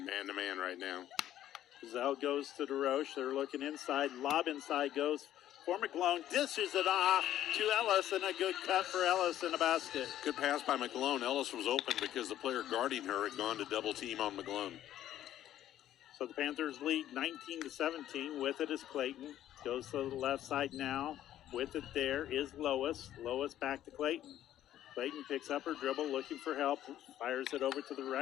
man-to-man right now. Bazell goes to DeRoche. They're looking inside. Lob inside goes for McGlone. Dishes it off to Ellis, and a good cut for Ellis in a basket. Good pass by McGlone. Ellis was open because the player guarding her had gone to double team on McGlone. So the Panthers lead 19-17. With it is Clayton. Goes to the left side now. With it there is Lois. Lois back to Clayton. Clayton picks up her dribble, looking for help. Fires it over to the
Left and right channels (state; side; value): quieter; right; 12.2 dB